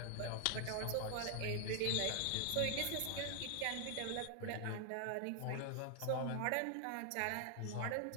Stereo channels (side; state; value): both; different; correlation 0.00